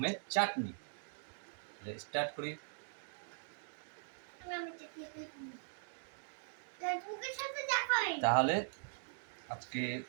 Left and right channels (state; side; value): silent; left; digital silence